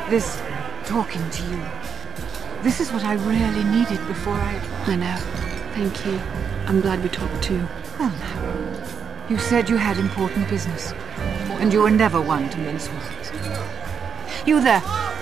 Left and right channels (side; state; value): left; quieter; 7.1 dB